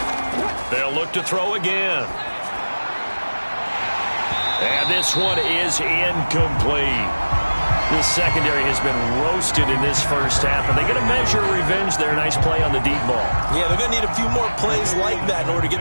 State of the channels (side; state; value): both; inverted; correlation -1.00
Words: They'll look to throw again. And this one is incomplete. The secondary has been roasted in this first half, and they get a measure of revenge there. Nice play on the deep ball. Yeah, they're going to need a few more plays like that in order to get